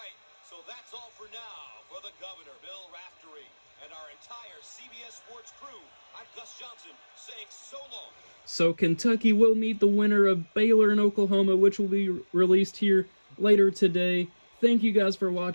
so that's all for now. For the governor, Bill Raftery, and our entire CBS Sports crew, I'm Gus Johnson saying so long. So Kentucky will meet the winner of Baylor and Oklahoma, which will be released here later today. Thank you guys for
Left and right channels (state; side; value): inverted; both; correlation -1.00